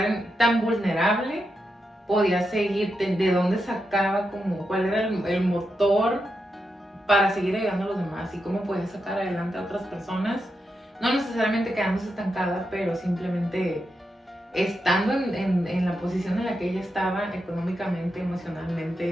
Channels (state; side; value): normal; both; correlation 0.86